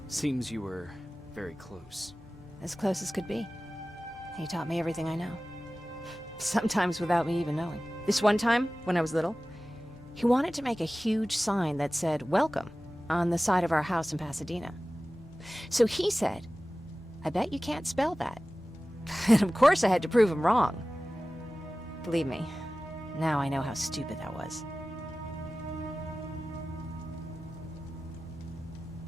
Seems you were very close. As close as could be. He taught me everything I know. Sometimes without me even knowing. This one time, when I was little, he wanted to make a huge sign that said, "Welcome," on the side of our house in Pasadena. So he said, "I bet you can't spell that." And of course I had to prove him wrong. Believe me, now I know how stupid that was.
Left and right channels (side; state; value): both; normal; correlation 0.96